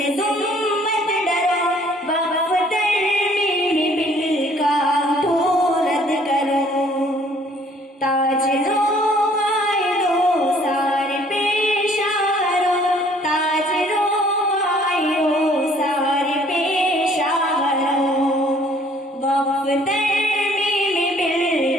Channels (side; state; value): both; normal; correlation 0.59